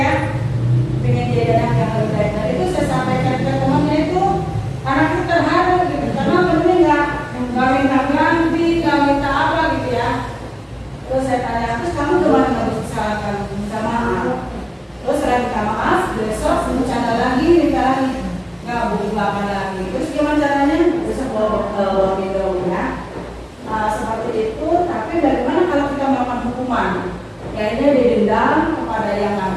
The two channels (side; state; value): both; identical; correlation 1.00